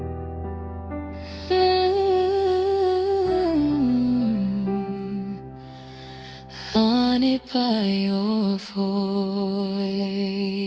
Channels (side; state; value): both; identical; correlation 1.00